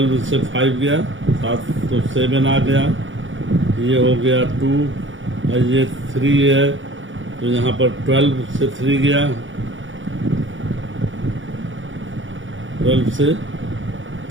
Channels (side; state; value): left; late; 0.56 ms